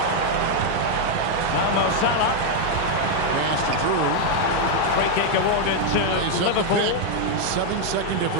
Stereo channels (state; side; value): different; both; correlation 0.00